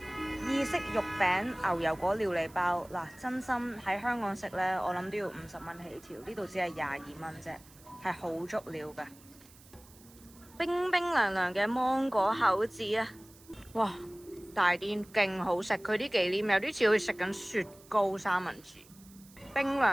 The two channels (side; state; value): right; noise; hiss, 24 dB below the sound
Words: 意式肉餅牛油果料理包。嗱，真心喺香港食呢，我諗都要50蚊起跳，呢度只係22蚊啫，係好足料㗎。冰冰涼涼嘅芒果口子啊！哇，大啲勁好食，佢啲忌廉有啲似好似食緊雪糕三文治，冰